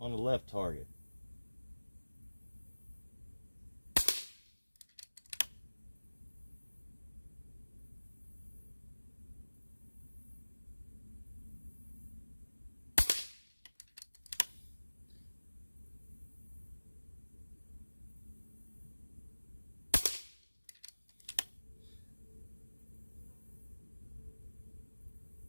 on the left target.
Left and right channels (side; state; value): both; inverted; correlation -1.00